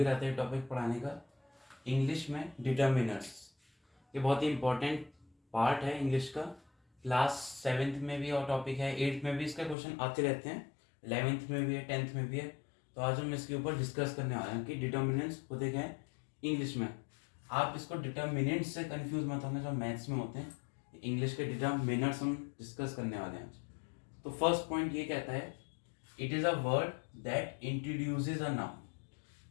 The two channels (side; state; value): right; drops out; at 9.8 s